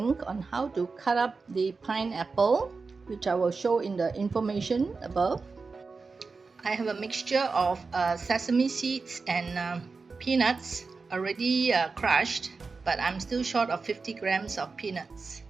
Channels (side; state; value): left; quieter; 4.4 dB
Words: on how to cut up the pineapple, which I will show in the information above. I have a mixture of sesame seeds and peanuts already crushed, but I'm still short of 50 grams of peanuts.